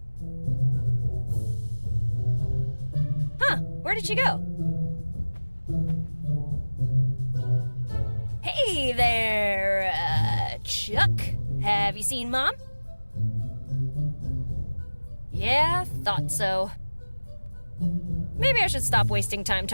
Huh, where did she go? Hey there, Chuck. Have you seen Mom? Yeah, thought so. Maybe I should stop wasting time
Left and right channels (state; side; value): inverted; both; correlation -1.00